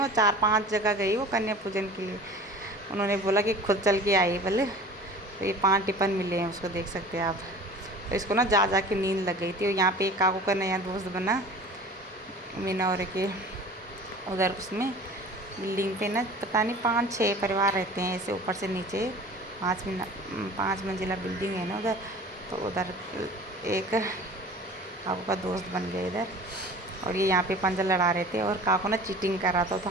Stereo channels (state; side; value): normal; both; correlation 0.42